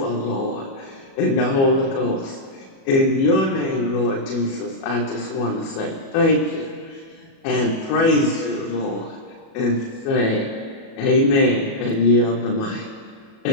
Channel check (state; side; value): late; right; 37 ms